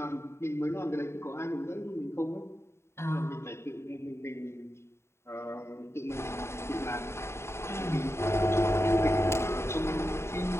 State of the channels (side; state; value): right; late; 0.13 ms